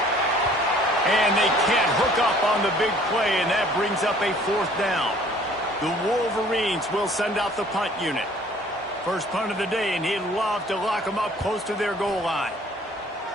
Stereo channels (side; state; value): both; normal; correlation 0.55